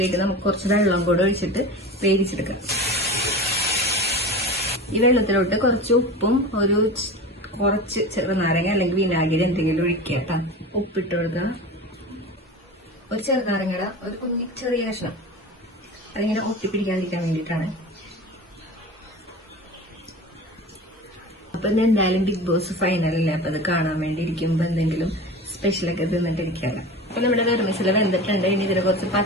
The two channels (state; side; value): normal; both; correlation 0.32